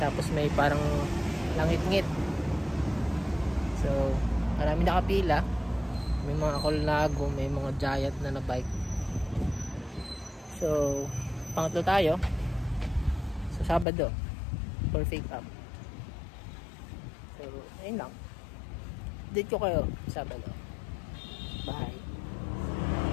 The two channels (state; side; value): drops out; right; at 13.9 s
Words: tapos may parang langit-ngit. So marami nakapila, may mga Colnago, may mga Giant na bike. So pangatlo tayo sa Sabado for pick up. So ayun lang, date ko kayo Sabado. Bye.